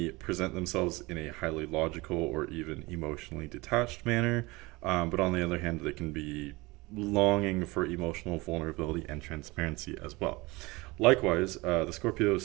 present themselves in a highly logical or even emotionally detached manner, but on the other hand, they can be longing for emotional vulnerability and transparency as well. Likewise, the Scorpio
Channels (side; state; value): left; quieter; 23.0 dB